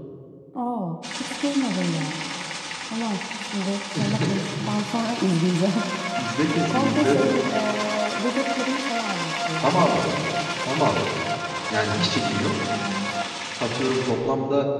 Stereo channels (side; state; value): both; identical; correlation 1.00